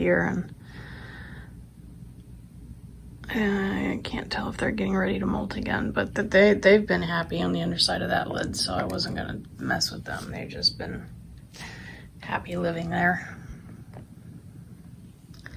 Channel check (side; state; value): both; identical; correlation 1.00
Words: and I can't tell if they're getting ready to molt again, but they've been happy on the underside of that lid, so I wasn't gonna mess with them. They've just been happy living there.